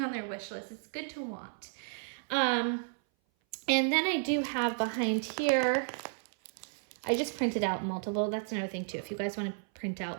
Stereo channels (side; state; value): left; silent; 56 dB below the other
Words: their wish list. It's good to want. And then I do have behind here, I just printed out multiple. That's another thing too. If you guys want to print